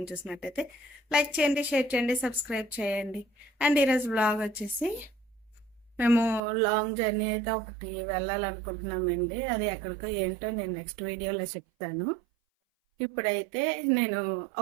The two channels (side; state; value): left; drops out; at 6.4 s